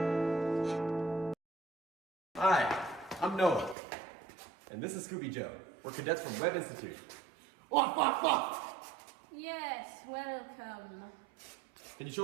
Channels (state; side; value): drops out; left; at 3.8 s